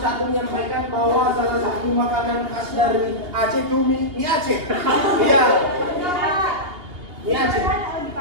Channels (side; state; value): left; late; 2.8 ms